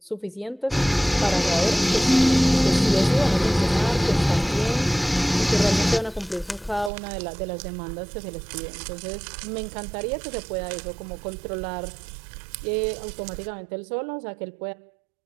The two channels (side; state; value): left; drops out; at 6.9 s